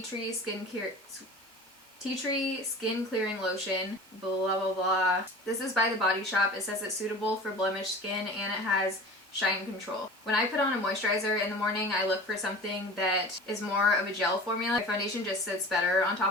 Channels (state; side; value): normal; both; correlation 0.38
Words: Tree Skin Clearing Lotion, blah blah blah. This is by The Body Shop. It says it's suitable for blemished skin and it has shine control. When I put on a moisturizer in the morning, I look for something that is more of a gel formula. My foundation just sits better on